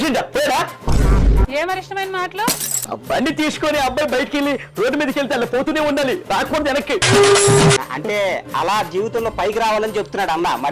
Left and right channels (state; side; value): identical; both; correlation 1.00